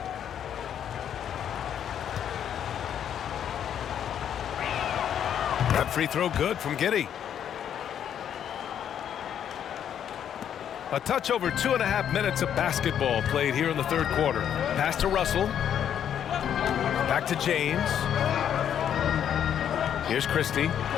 That free throw good from Giddey. A touch over 2.5 minutes of basketball played here in the third quarter. Pass to Russell. Back to James. Here's Christie.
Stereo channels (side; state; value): right; quieter; 9.3 dB